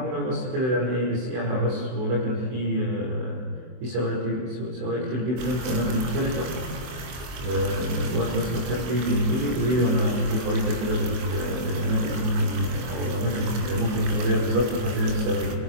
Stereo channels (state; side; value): late; left; 24 ms